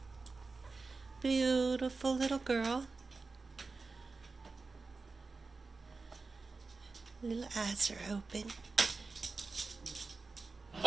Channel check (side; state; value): left; quieter; 4.0 dB